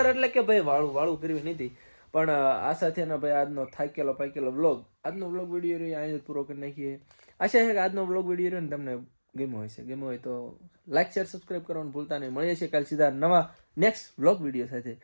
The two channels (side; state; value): both; inverted; correlation -1.00